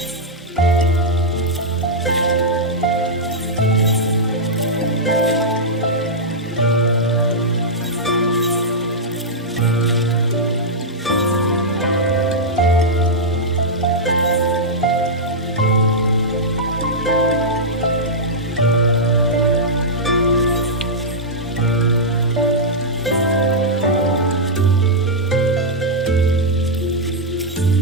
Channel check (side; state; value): both; normal; correlation -0.07